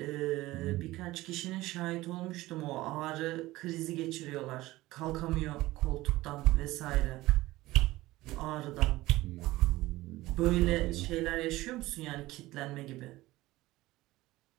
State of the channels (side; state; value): left; quieter; 18.1 dB